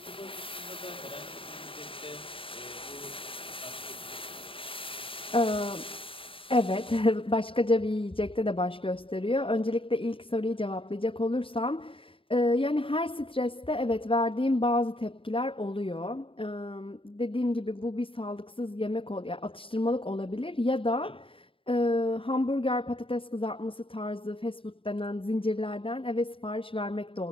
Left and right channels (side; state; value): right; late; 0.26 ms